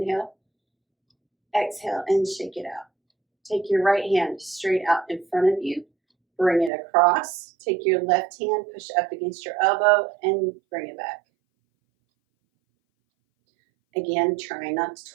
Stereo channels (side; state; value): left; drops out; at 6.7 s